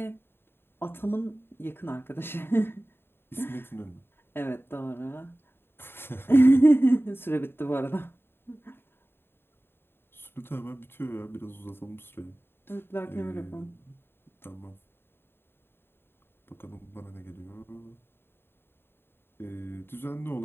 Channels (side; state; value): right; late; 0.11 ms